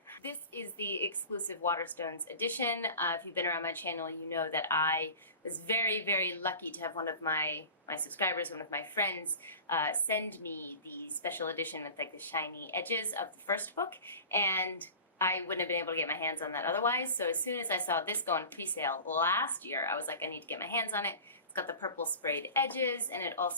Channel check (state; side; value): inverted; both; correlation -0.37